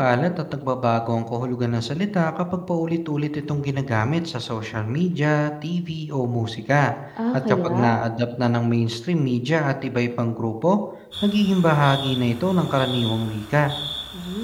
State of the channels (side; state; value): both; identical; correlation 1.00